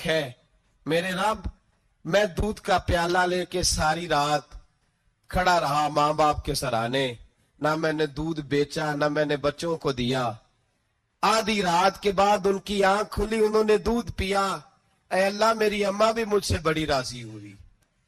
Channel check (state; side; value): identical; both; correlation 1.00